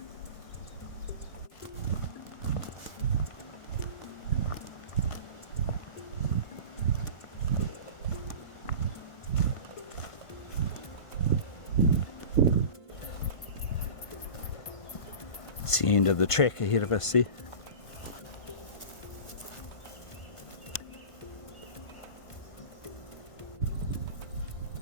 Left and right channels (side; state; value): right; late; 1.5 ms